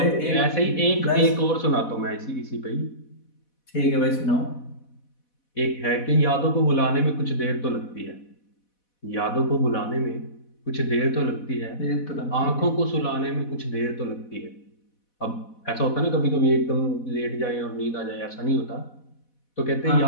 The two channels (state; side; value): late; right; 4.1 ms